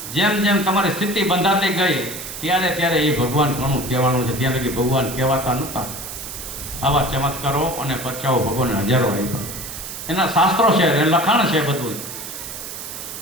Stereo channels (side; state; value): right; noise; hiss, 9 dB below the sound